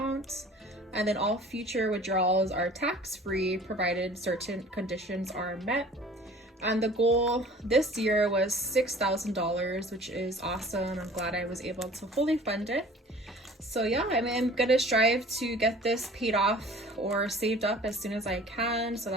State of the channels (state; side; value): normal; both; correlation 0.47